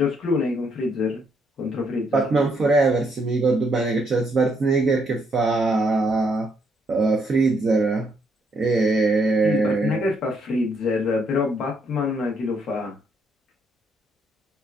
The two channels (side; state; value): both; normal; correlation 0.73